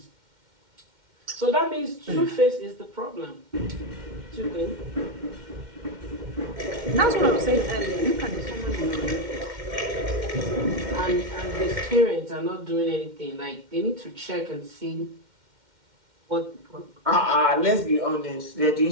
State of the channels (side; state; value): left; late; 2.1 ms